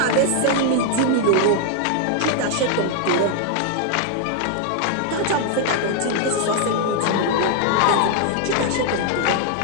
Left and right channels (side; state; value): both; different; correlation 0.00